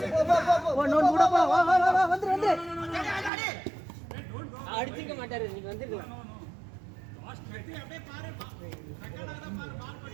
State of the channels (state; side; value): drops out; left; at 3.3 s